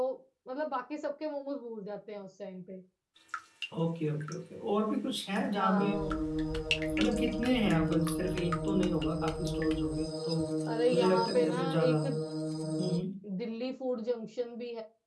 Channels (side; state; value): both; identical; correlation 1.00